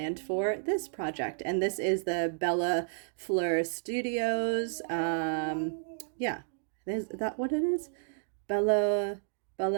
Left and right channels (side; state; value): left; silent; digital silence